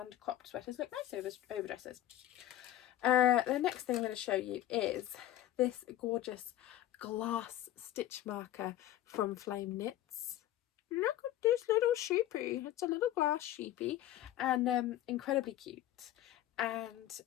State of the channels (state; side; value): quieter; right; 13.4 dB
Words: cropped sweaters look nice over dresses. The next thing I'm going to show you is this gorgeous glass stitch marker from Flame Knits. Look at this little sheepy. It's a little glass sheepy, and incredibly cute. And